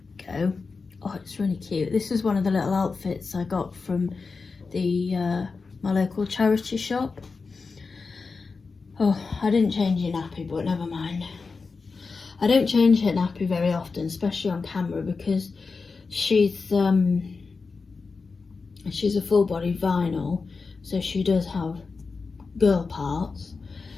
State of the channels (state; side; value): quieter; right; 4.5 dB